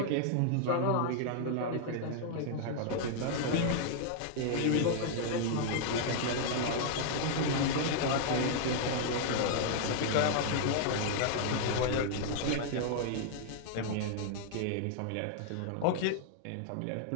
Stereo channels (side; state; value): both; different; correlation -0.01